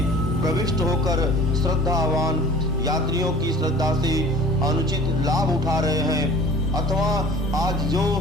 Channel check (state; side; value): normal; both; correlation 0.45